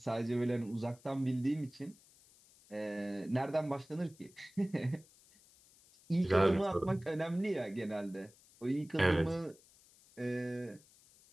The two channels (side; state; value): left; noise; hiss, 27 dB below the sound